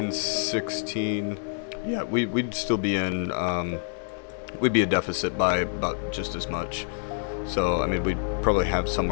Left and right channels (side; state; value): right; silent; digital silence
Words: 16. Yeah, we'd still be in, we'd be a deficit by about just as much. So, I mean, we'd probably have